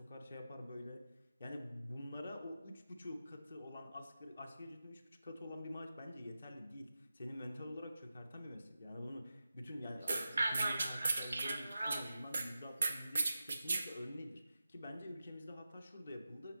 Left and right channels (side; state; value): both; inverted; correlation -0.92